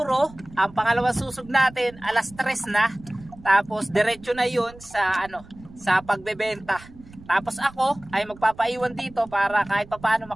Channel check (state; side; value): noise; right; rumble, 21 dB below the sound